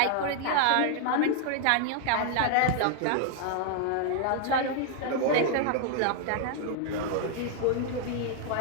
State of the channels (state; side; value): different; both; correlation 0.00